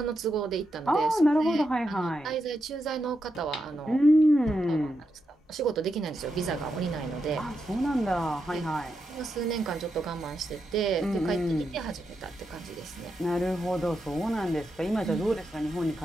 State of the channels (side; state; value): both; normal; correlation 0.85